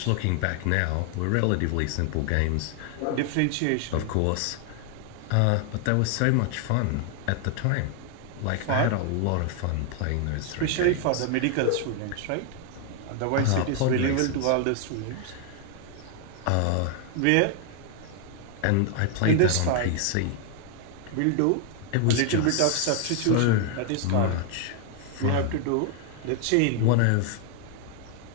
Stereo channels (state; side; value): different; both; correlation 0.00